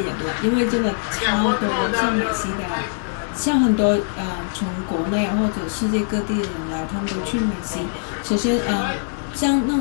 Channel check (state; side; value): silent; right; digital silence